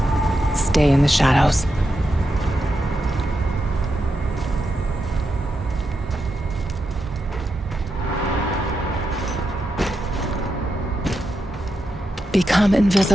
Stay in the shadows. Become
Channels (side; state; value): both; normal; correlation 0.86